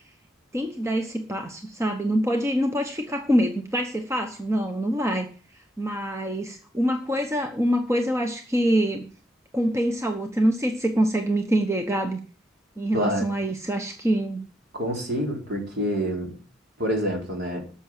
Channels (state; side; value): normal; both; correlation 0.77